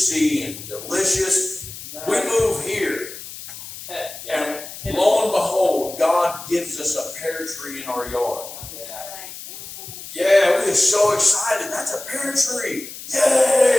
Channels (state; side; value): noise; left; hiss, 12 dB below the sound